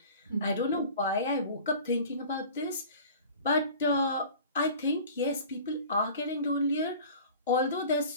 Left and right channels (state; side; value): inverted; both; correlation -0.42